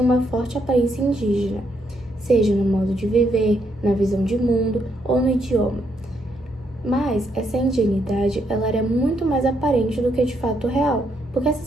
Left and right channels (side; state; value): right; noise; hum, 26 dB below the sound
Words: uma forte aparência indígena, seja no modo de viver, na visão de mundo ou no idioma. Mas essa indianidade ela era muito mais aparente do que de fato real, porque